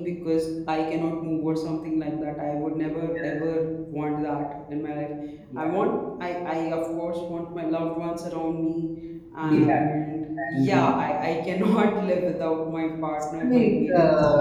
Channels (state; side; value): identical; both; correlation 1.00